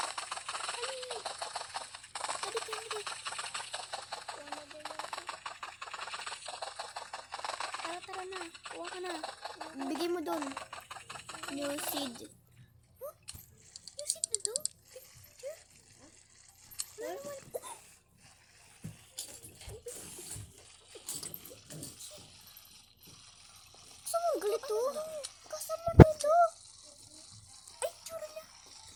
Tara na, kuha ka na. Bigay mo doon. New seed. Huh? New seed na doon? Gusto mo galit to? Kasama na ito. Ay, tsura niya.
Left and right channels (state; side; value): identical; both; correlation 1.00